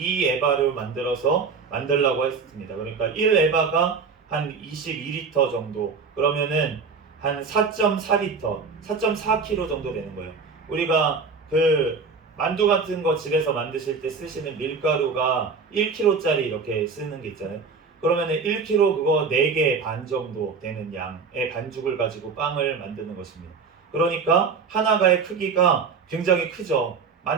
에바를 만들라고 했습니다. 그러니까 1 에바가 한 22리터 정도, 그러면은 한 4.4리터, 4.4kg 정도 되는 거예요. 우리가 그 만두 같은 거 집에서 만드실 때 쓰시는 밀가루가 1kg짜리 이렇게 쓰는 게 있잖아요. 그러면은 1kg 그거 4개 반 정도 되는 양의 반죽을 가지고 빵을 만드는 것입니다. 그러니까 하나가의 크기가 굉장히 크죠.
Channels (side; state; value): left; quieter; 5.1 dB